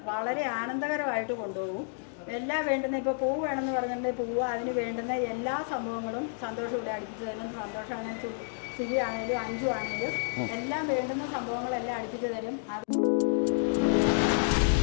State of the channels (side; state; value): right; silent; digital silence